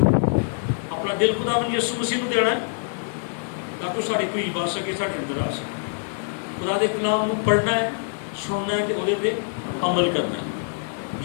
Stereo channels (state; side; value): silent; right; digital silence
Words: اپنا دل خداوند یسوع مسیح کو دینا ہے تاکہ ساری کوئی بات سکے، سارے اندر آ سکے. خدا دے کلام کو پڑھنا ہے، سننا ہے تو وہ عمل کرنا ہے.